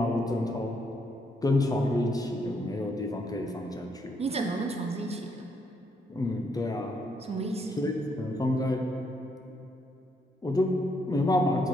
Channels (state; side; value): normal; both; correlation 0.74